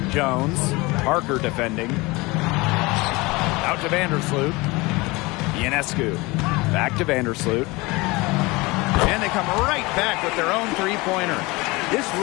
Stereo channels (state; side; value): quieter; right; 23.6 dB